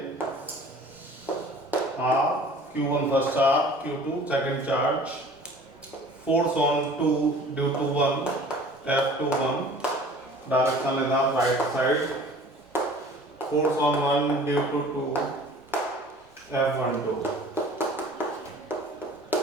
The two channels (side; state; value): both; normal; correlation 0.47